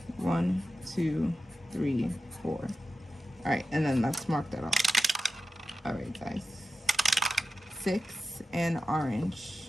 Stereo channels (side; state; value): both; normal; correlation 0.92